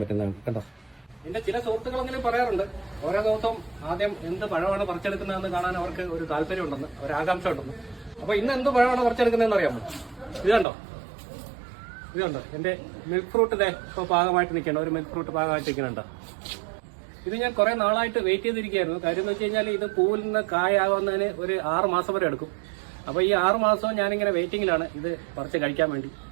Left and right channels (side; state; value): left; drops out; at 10.7 s